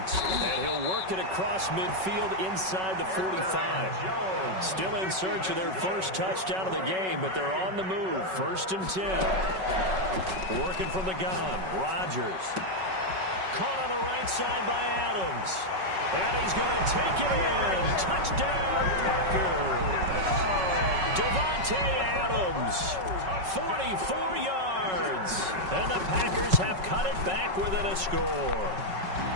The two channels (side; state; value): left; late; 5.3 ms